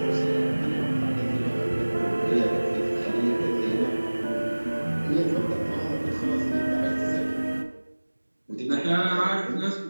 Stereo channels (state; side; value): inverted; both; correlation -1.00